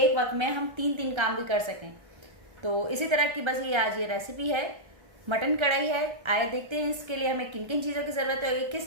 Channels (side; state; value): left; late; 1.3 ms